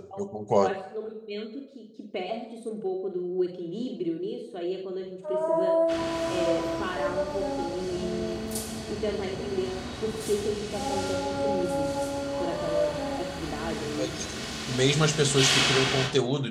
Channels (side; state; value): both; identical; correlation 1.00